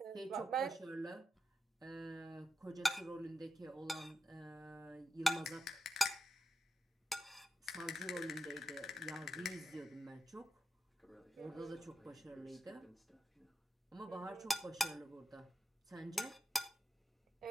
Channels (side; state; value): both; normal; correlation 0.87